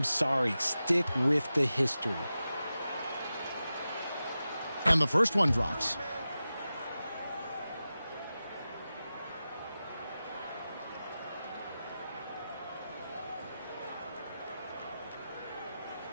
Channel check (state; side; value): inverted; both; correlation -0.93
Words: sorry. Stick with the history. And the first one drops.